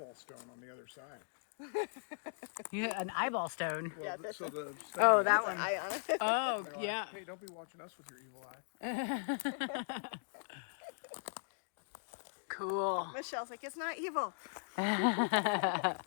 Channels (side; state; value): right; silent; digital silence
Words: stone on the other side. yeah, an eyeball stone. Well, Yeah, that's so the Oh, that one. Eye on it. Oh, they're like, yeah. hey, don't be watching us with your evil eye. Cool. Michelle's like, it's not evil.